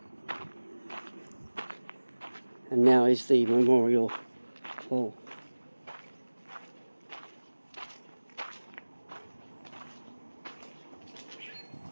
And now is the Memorial Hall.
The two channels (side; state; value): both; inverted; correlation -1.00